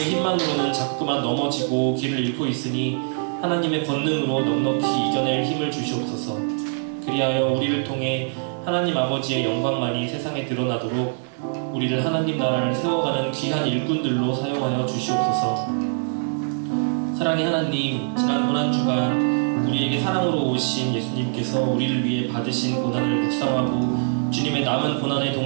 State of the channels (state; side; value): silent; left; digital silence